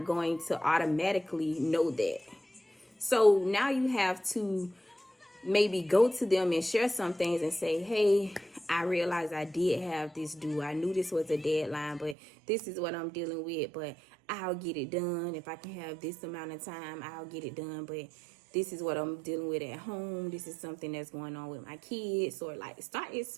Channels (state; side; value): drops out; left; at 12.2 s